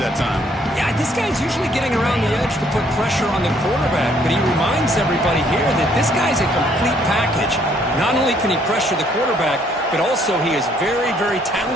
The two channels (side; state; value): both; normal; correlation 0.66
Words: time. Yeah, this guy's usually getting around the edge to put pressure on the quarterback, but he reminds everybody here that this guy's a complete package. Not only can he pressure the quarterback, but also he is very, very